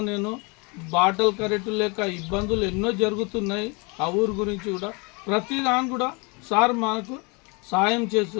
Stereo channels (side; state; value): right; quieter; 29.8 dB